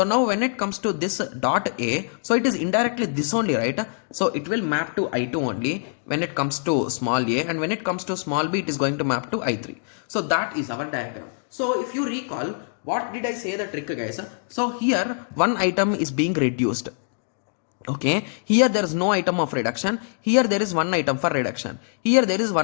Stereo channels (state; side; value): silent; right; digital silence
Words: now when it comes to this dot A, so it is indirectly this only, right? So it will map to I2 only when it comes to small a, and when it comes to small b, it is going to map to I3. So that is our diagram. So if you recall, what did I say the trick, guys? So here one item is being reduced. Okay, here there is no item of reduction. Here there is one item for reduction. Here there is